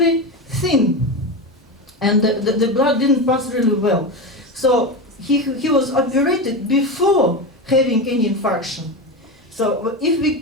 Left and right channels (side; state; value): both; normal; correlation 0.19